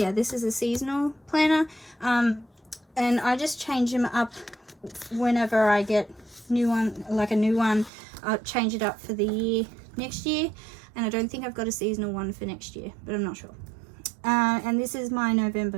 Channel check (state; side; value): drops out; left; at 7.9 s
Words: this is a seasonal planner. And I just change them up whenever I get a new one. I'll change it up for the year next year. And I don't think I've got a seasonal one for next year, but I'm not sure. And this is my